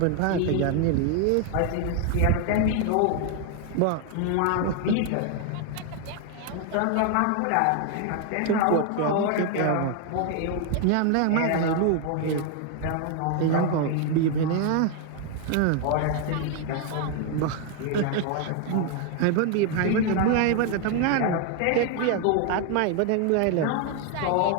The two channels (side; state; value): both; different; correlation 0.01